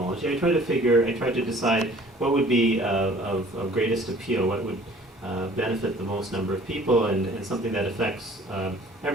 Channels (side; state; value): both; normal; correlation 0.52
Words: I tried to decide what would be of greatest appeal, what would benefit the most number of people, and something that affects